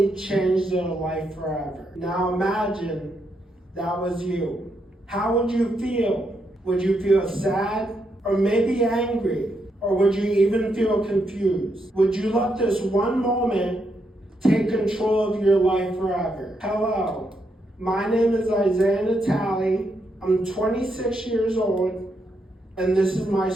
change their life forever. Now imagine that was you. How would you feel? Would you feel sad or maybe angry? Or would you even feel confused? Would you let this one moment take control of your life forever? Hello, my name is Isaiah Natali. I'm 26 years old, and this is my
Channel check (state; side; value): normal; both; correlation 0.80